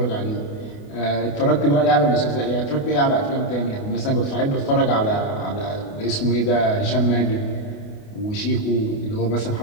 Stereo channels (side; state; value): right; late; 28 ms